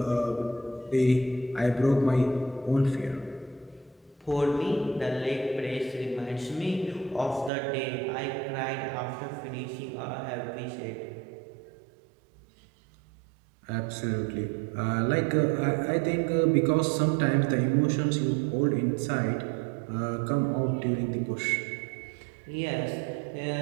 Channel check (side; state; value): left; drops out; at 7.5 s